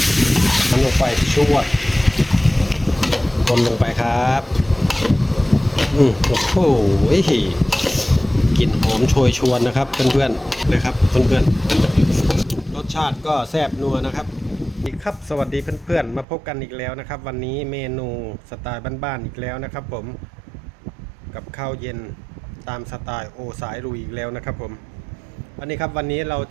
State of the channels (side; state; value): left; drops out; at 16.2 s